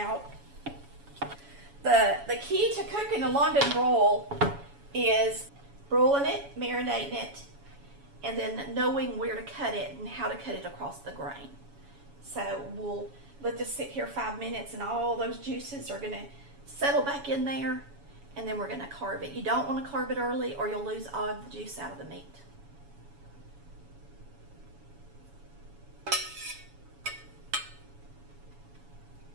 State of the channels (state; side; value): late; left; 7.1 ms